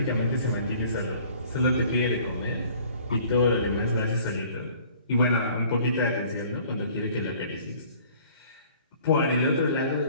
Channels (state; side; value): inverted; both; correlation -0.53